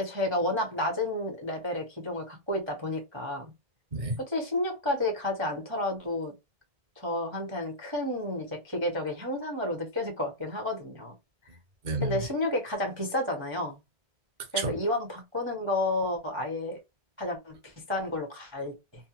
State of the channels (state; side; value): late; left; 2.1 ms